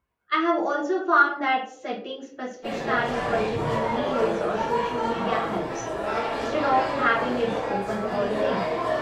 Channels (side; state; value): both; identical; correlation 1.00